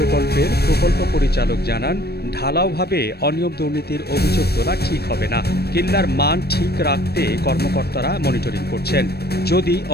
প্রকল্প পরিচালক জানান, ঢালাওভাবে অনিয়ম দুর্নীতির অভিযোগ তোলা ঠিক হবে না। কিল্লার মান ঠিক রাখতে কর্মকর্তারা মনিটরিং করছেন। যদি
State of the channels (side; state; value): right; late; 0.47 ms